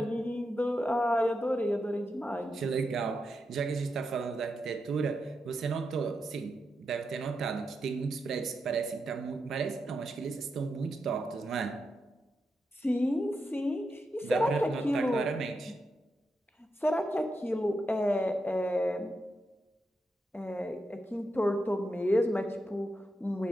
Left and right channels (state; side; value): normal; both; correlation 0.86